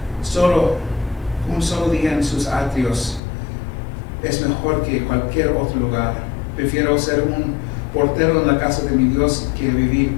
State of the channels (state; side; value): drops out; right; at 3.2 s